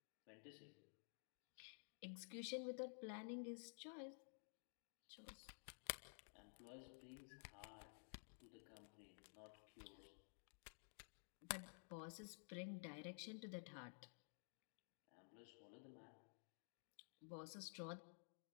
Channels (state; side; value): silent; right; digital silence